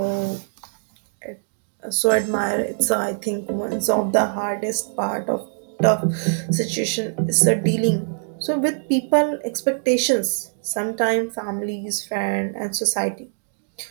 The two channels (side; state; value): left; silent; digital silence